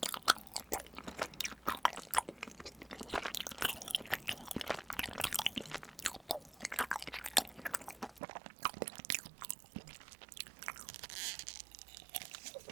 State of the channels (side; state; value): left; drops out; at 8.2 s